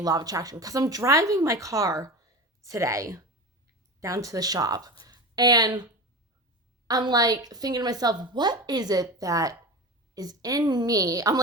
law of attraction, because I'm driving my car today down to the shop, and I'm like thinking to myself, what is it that is in me? I'm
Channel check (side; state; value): both; normal; correlation 0.28